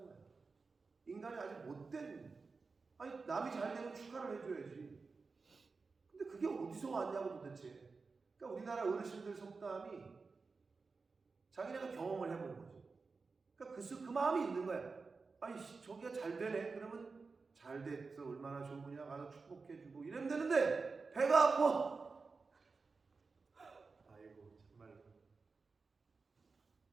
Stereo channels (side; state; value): left; quieter; 4.4 dB